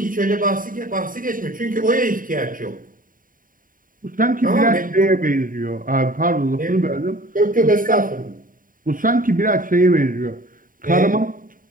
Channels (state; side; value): late; left; 0.40 ms